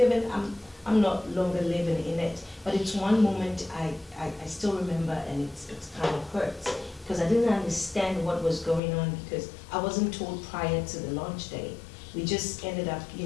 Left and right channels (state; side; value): drops out; right; at 8.8 s